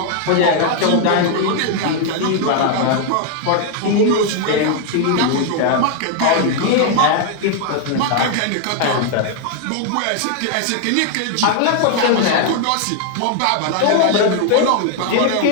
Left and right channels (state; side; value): different; both; correlation 0.00